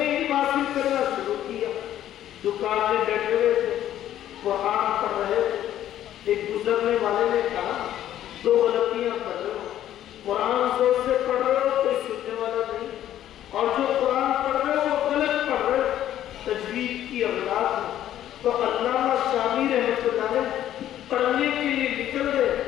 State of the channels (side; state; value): right; quieter; 11.9 dB